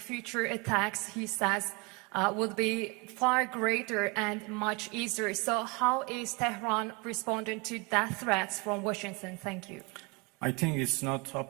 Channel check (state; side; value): quieter; left; 28.6 dB